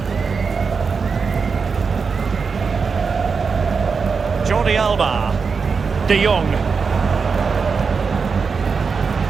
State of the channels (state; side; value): quieter; left; 5.3 dB